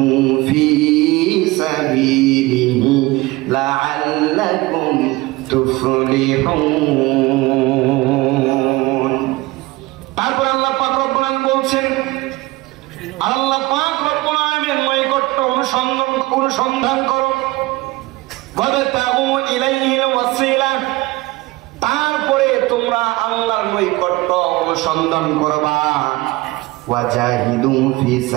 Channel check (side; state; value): left; quieter; 20.7 dB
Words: ফি সাবিলিহি লাআল্লাকুম তুফলিহুন। তারপর আল্লাহ পাক রব্বুল আলামিন বলছেন, আল্লাহ পাক রব্বুল আলামিনের নৈকট্য অনুসন্ধান করো। ওয়াবতাগু ইলাইহিল ওয়াসিলা, তারপরে তোমরা আল্লাহর নৈকট্য অনুসন্ধান করবা। ওয়াজাহিদু ফি